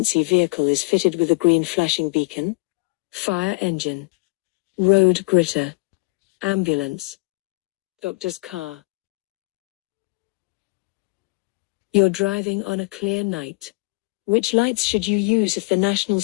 vehicle is fitted with a green flashing beacon? Fire engine. Road gritter. Ambulance. Doctor's car. You're driving on a clear night. Which lights should you use if the national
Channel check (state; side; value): quieter; right; 27.6 dB